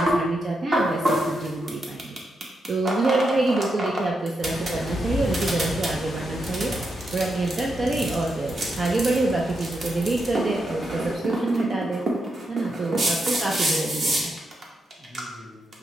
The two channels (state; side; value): normal; both; correlation 0.84